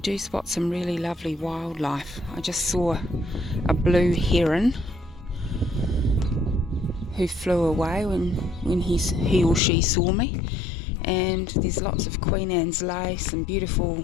spot some really lovely wildlife. I just saw a blue heron who flew away when he or she saw me. And there's lots of Queen Anne's lace and beautiful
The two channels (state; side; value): drops out; right; at 9.6 s